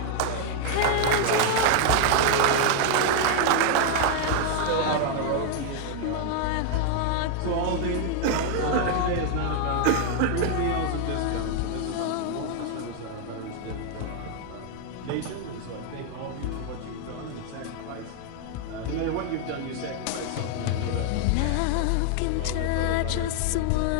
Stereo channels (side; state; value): both; different; correlation 0.00